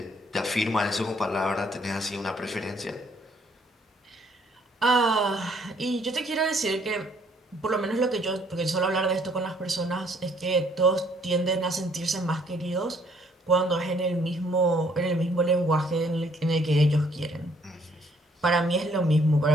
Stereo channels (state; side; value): normal; both; correlation 0.64